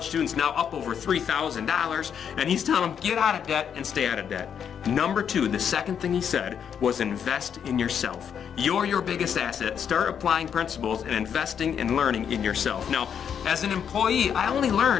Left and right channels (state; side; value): quieter; right; 8.0 dB